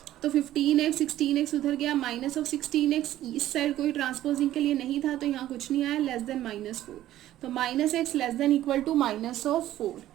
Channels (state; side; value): quieter; left; 13.5 dB